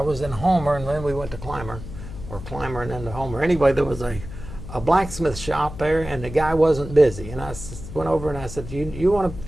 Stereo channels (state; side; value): noise; left; hum, 11 dB below the sound